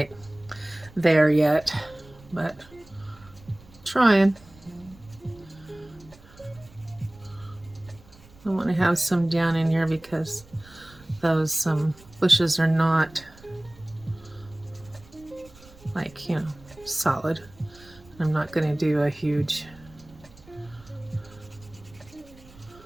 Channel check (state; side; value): noise; right; rumble, 24 dB below the sound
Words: there yet, but trying. I want to have some down in here because those bushes are not like, solid. I'm not going to do a huge